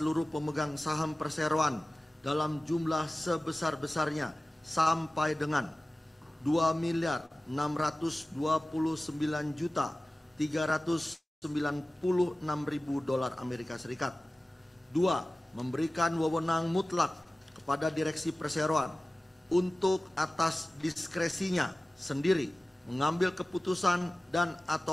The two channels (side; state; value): both; normal; correlation 0.97